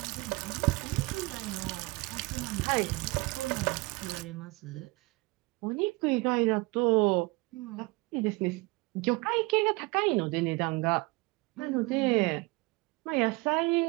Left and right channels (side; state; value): left; quieter; 24.7 dB